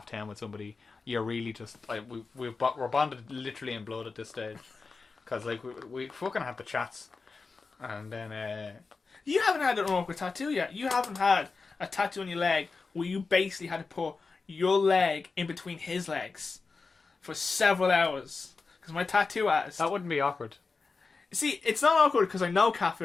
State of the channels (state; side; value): quieter; right; 4.3 dB